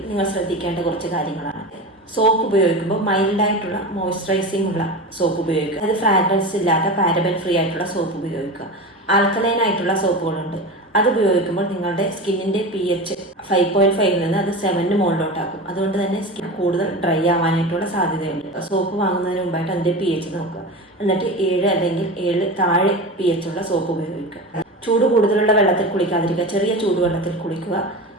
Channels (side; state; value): both; normal; correlation 0.27